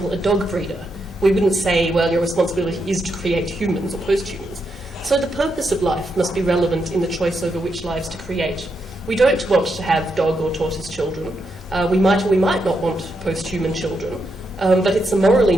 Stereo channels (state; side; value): normal; both; correlation 0.82